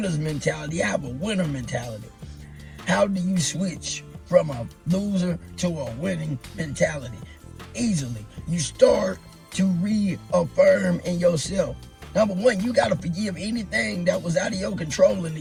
mentality, I have a winner mentality. How do you switch from a loser to a winning mentality? Easily. You start to reaffirm in yourself. Number one, you got to forgive anything that was out of your control and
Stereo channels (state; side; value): identical; both; correlation 1.00